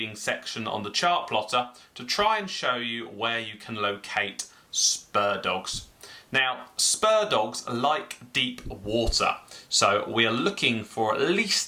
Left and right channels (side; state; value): both; identical; correlation 1.00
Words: section on the chart plotter to try and show you where you can locate Spurdogs. Now, Spurdogs like deep water, so we are looking for at